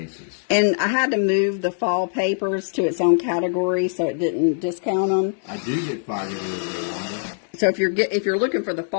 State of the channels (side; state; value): right; silent; digital silence